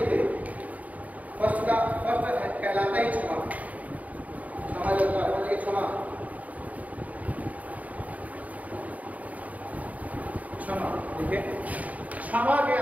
फर्स्ट कहलाता ही क्षमा जो होता है क्षमा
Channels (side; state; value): left; late; 0.072 ms